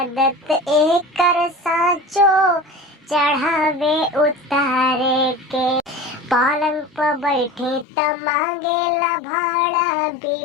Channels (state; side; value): drops out; right; at 7.9 s